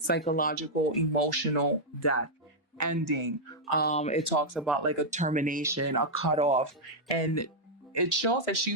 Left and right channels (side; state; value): both; normal; correlation -0.05